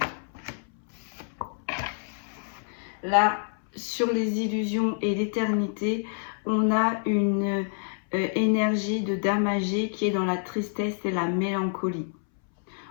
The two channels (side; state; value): right; silent; 60 dB below the other